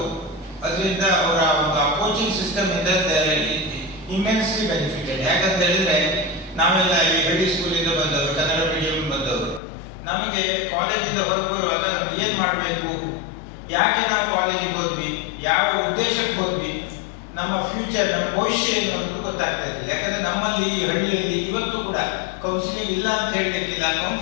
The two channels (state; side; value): drops out; right; at 9.6 s